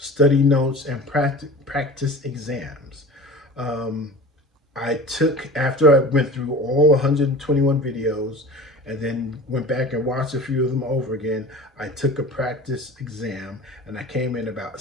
notes and practice exams. After I went through all 121 videos and then went back and watched a few of them over again. I took a practice exam and I came in about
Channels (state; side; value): normal; both; correlation 0.38